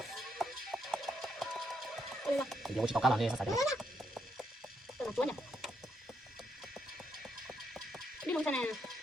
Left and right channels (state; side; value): normal; both; correlation 0.76